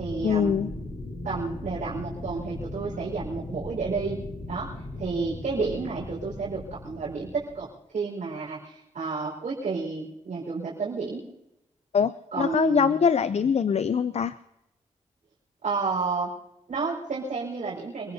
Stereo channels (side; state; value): both; normal; correlation 0.47